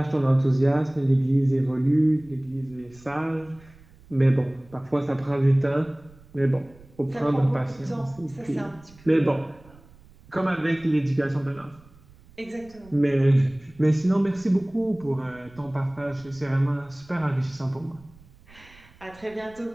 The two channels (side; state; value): right; noise; rumble, 25 dB below the sound